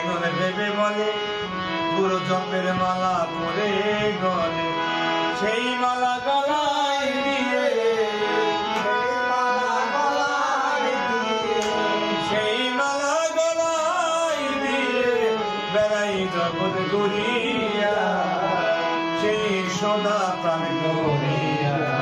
নলে ভেবে বলে গুরু জপের মালা পরে গলে। সেই মালা গলায় দিয়ে, সেই মালা গলায় দিয়ে বেড়াই জগৎ ঘুরিয়া, সেই সুদা প্রাণ করিয়া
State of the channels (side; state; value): both; identical; correlation 1.00